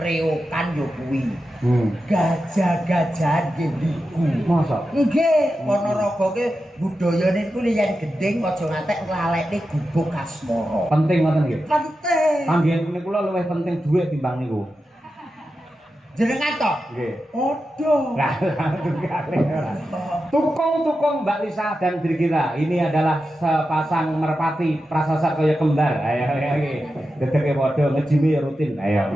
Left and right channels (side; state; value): both; normal; correlation 0.90